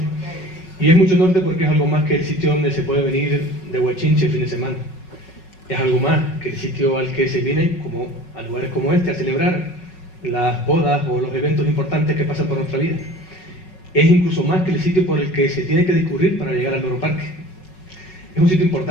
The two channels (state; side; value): late; right; 5.4 ms